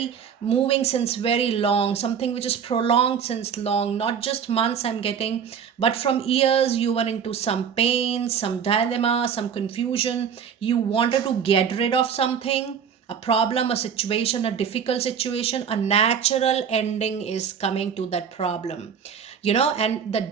moving since very long, something which is prolonged since long, not just months I'm getting, but from years. You were into some pain, some dilemma, some confusion. You wanted to get rid of something, a problem, a situation, a difficult situation. A natural ending is coming to that problem. And the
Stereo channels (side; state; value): left; quieter; 7.4 dB